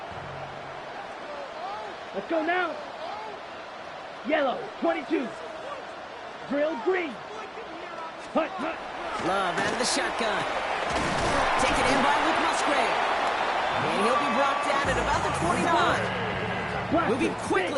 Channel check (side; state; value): both; identical; correlation 1.00